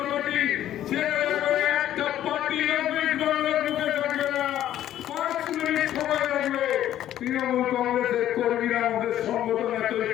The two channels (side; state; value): right; quieter; 12.0 dB